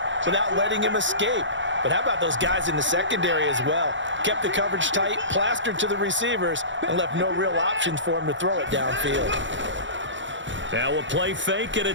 without letting him escape. But how about those guys in the secondary as well? Kept the coverage tight, plastered to the receivers, and left no real options for him to throw it downfield. Now a play fake, and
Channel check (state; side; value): late; left; 0.54 ms